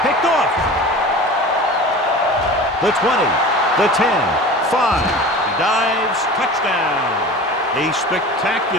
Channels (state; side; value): normal; both; correlation 0.37